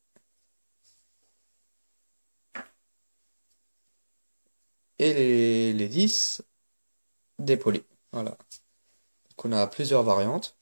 Et les 10 dépolis. Voilà. Donc on a plusieurs variantes.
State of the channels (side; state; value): both; inverted; correlation -1.00